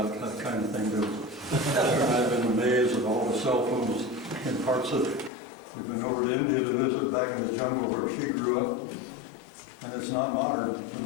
that kind of thing, do we? I've been amazed at all the cell phones in parts of it. We've been over to India to visit back in the jungle where she grew up, and it's not modern.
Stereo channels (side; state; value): right; drops out; at 5.3 s